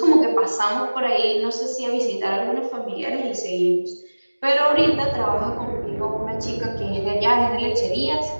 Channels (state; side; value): inverted; both; correlation -1.00